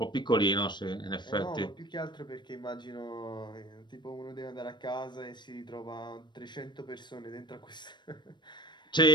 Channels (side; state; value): right; late; 0.22 ms